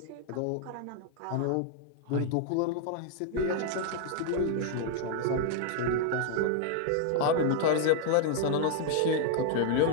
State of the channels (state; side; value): different; both; correlation 0.00